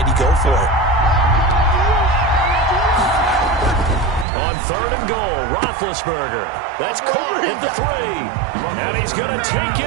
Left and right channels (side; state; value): left; drops out; at 4.2 s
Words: he go for it? On 3rd and goal, Roethlisberger. That's caught at the 3. And he's going to take